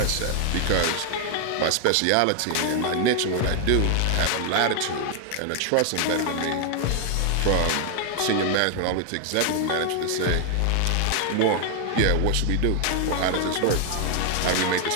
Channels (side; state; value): both; different; correlation 0.00